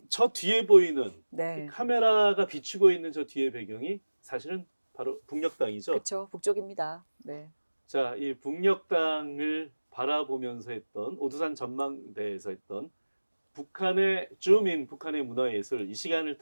저 뒤에 보이는 네. 이 카메라가 비추고 있는 저 뒤에 배경이 사실은 바로 북녘땅이죠. 그렇죠. 북쪽입니다. 네. 자, 이 북녘땅을 바라보면서 했던 오두산 전망대에서 했던 북한의 줌인 북한의 문화예술 이 시간을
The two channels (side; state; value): both; inverted; correlation -1.00